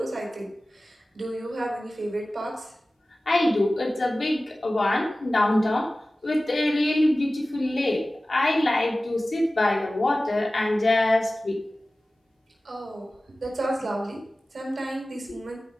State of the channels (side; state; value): both; normal; correlation 0.96